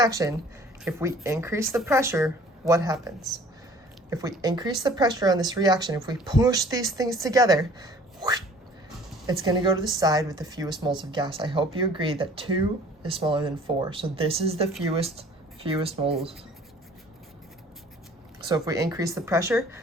if we increase the pressure, what happens? If we increase the pressure on this reaction, if we push these things together, it's going to go to the side with the fewest moles of gas. I hope you agree that 2 is smaller than 4. So this is the fewest moles. So if we increase the pressure,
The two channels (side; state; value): both; normal; correlation 0.52